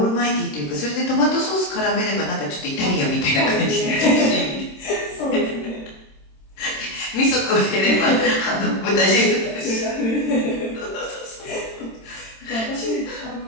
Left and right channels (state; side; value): late; right; 26 ms